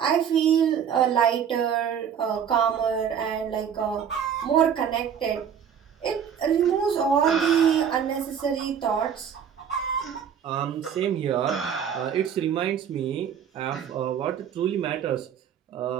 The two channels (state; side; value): quieter; left; 8.1 dB